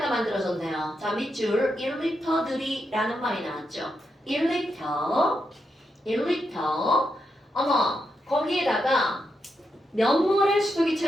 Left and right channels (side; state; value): both; normal; correlation 0.84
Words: 만들어졌네요. 자, 밑줄 1리터들이라는 말이 나왔죠. 1리터 어머, 거기에다가 몇 몰의